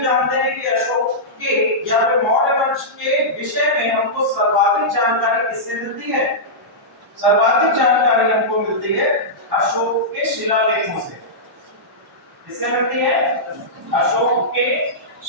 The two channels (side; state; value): both; normal; correlation -0.13